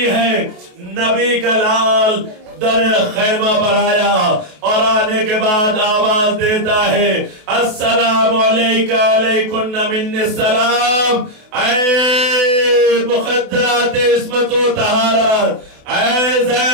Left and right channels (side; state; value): left; late; 28 ms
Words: ہے۔ نبی کا لال در خیمہ پر آیا اور آنے کے بعد آواز دیتا ہے السلام علیکہ علیکن من السلام، اے مخدرات عصمت و طہارت، اے